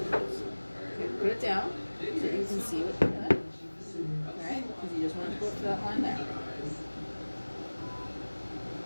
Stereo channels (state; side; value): inverted; both; correlation -1.00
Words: Okay, put it down so you can see what you're doing. Alright, because you just want to go up to that line there.